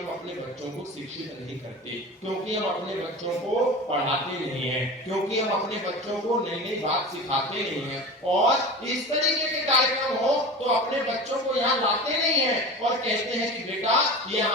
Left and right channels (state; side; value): normal; both; correlation 0.32